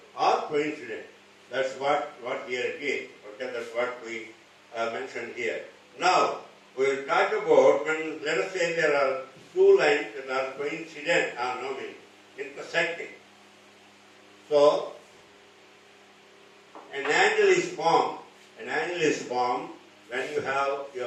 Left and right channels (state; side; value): identical; both; correlation 1.00